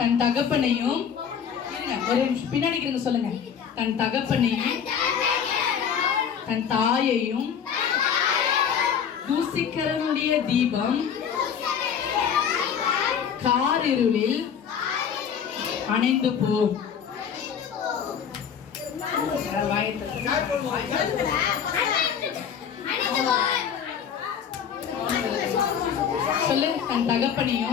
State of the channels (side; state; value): right; quieter; 7.7 dB